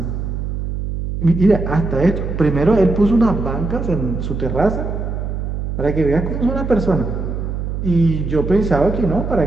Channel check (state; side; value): noise; right; hum, 4 dB below the sound